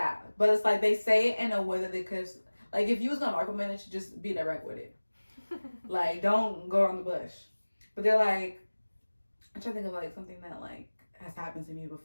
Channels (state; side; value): inverted; both; correlation -1.00